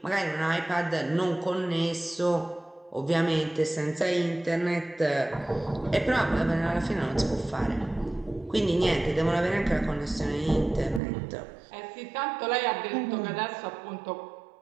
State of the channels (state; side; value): drops out; left; at 11.0 s